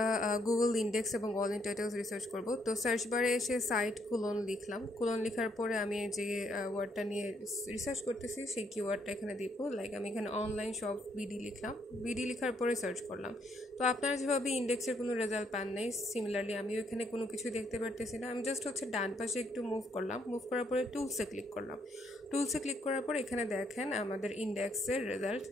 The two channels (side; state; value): both; normal; correlation 0.72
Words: গুগল ইন্ডেক্স এবং অল ইন টাইটেলস রিসার্চ করব। তো সার্চ বারে এসে সাইট কুলন লিখলাম। কুলন লেখার পরে আমি যে ওয়ার্ডটা নিয়ে রিসার্চ করতেছি সেই কিওয়ার্ডটা এখানে দিব। লাইক আমি এখানে অনলাইন শপ বিডি লিখলাম। বিডি লেখার পরে সার্চ করলাম। তো আপনারা যেভাবে ইন্ডেক্সের কোনো রেজাল্ট পান নাই, সিমিলারলি আমিও এখানে কোনো কিছু দেখতে পারতেছি না। আমি জাস্ট ডান পাশে একটু মুভ করলাম। মুভ করার পরে টুলসে ক্লিক করলাম। টুলসে ক্লিক করার পর এখানে দেখেন আমাদের ইন্ডেক্সের রেজাল্ট